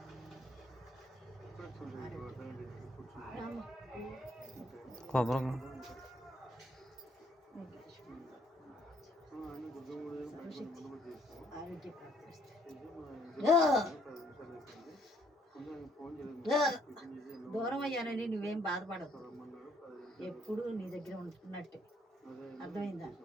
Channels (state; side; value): normal; both; correlation 0.66